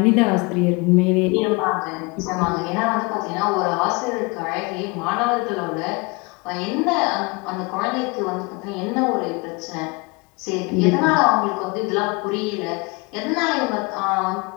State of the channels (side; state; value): right; quieter; 27.6 dB